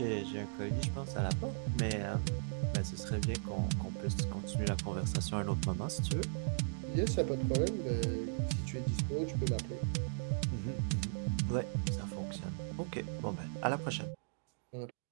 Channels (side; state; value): left; silent; digital silence